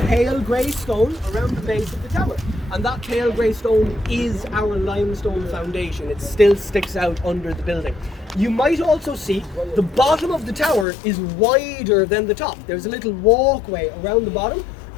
grey stone around the base of the tower. And that pale grey stone is our limestone foundation. It still sticks out under the building. You might also see the bottom of the tower is wider than the top. There's a little walkway around the bottom,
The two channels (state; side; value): drops out; right; at 10.9 s